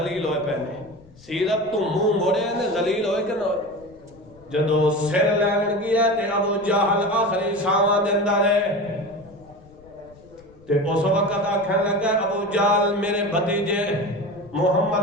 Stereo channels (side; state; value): left; noise; rumble, 25 dB below the sound